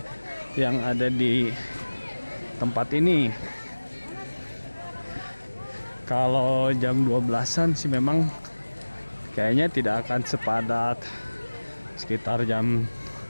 yang ada di tempat ini. Kalau jam 12-an sih memang kayaknya tidak akan sepadat sekitar jam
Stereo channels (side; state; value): both; inverted; correlation -1.00